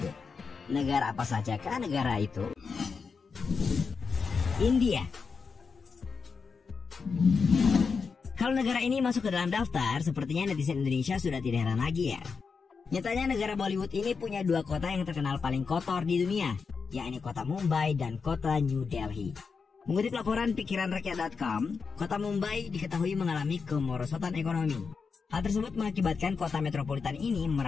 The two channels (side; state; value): right; quieter; 5.3 dB